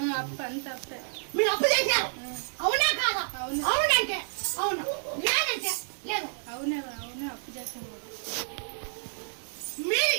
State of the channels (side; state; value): left; silent; digital silence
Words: అప్పు అంత అప్పే. మీరు అప్పు చేశారు అవునా కాదా? అవునంటే అవును, లేదంటే లేదు. అవునే అవునే అప్పు చేశాను. మీరు